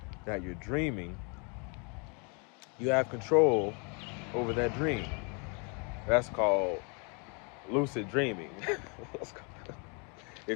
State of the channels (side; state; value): right; quieter; 34.7 dB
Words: that you're dreaming, you have control over that dream. That's called lucid dreaming.